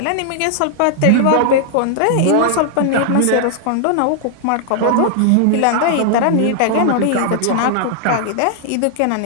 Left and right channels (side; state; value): both; different; correlation 0.00